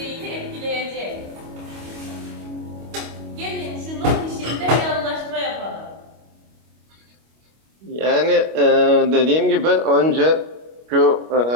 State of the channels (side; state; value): left; late; 25 ms